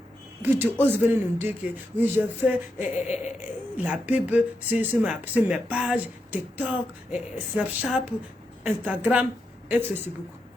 Puis tu oses venir nous dire que oui, je fais la pub sur mes pages, TikTok, Snapchat, Instagram et Facebook.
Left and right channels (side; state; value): both; normal; correlation 0.85